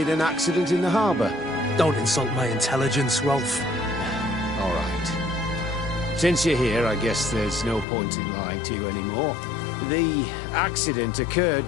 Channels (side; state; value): right; drops out; at 7.9 s